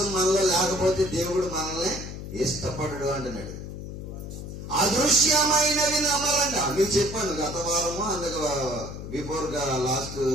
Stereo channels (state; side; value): noise; left; hum, 9 dB below the sound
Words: మనలో లేకపోతే దేవుడు మనల్ని ఇష్టపడడు అంటున్నాడు. అదృశ్యమైనవి నమ్మాలంట. మీకు చెప్పాను గత వారము, అందుకు బిఫోర్ గా లాస్ట్